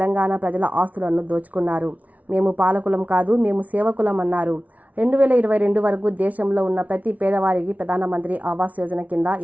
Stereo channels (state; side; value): late; left; 0.071 ms